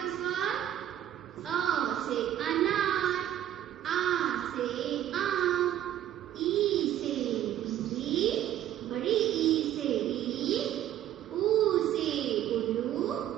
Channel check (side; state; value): left; quieter; 11.8 dB